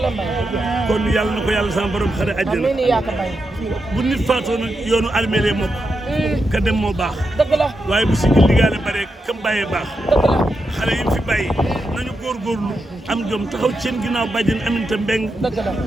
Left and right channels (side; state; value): both; normal; correlation 0.86